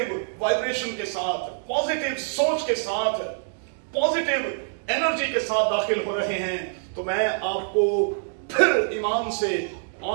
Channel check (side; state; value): left; silent; digital silence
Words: वाइब्रेशन के साथ, पॉजिटिव सोच के साथ, पॉजिटिव एनर्जी के साथ दाखिल हो रहे हैं तो मैं आपको फिर ईमान से